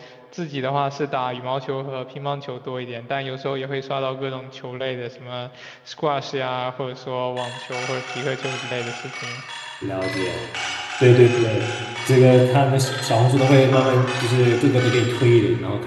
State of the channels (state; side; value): identical; both; correlation 1.00